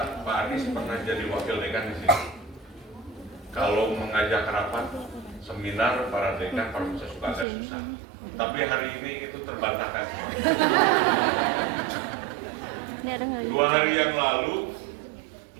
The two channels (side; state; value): left; drops out; at 7.5 s